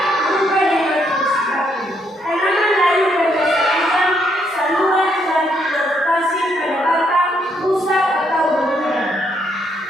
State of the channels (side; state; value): both; normal; correlation 0.73